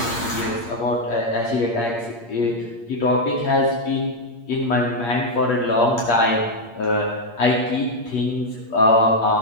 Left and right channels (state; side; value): late; right; 8.6 ms